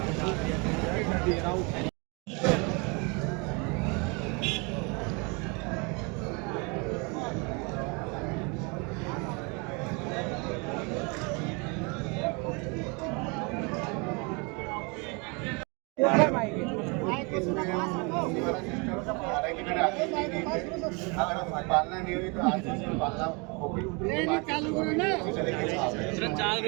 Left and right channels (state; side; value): quieter; left; 30.8 dB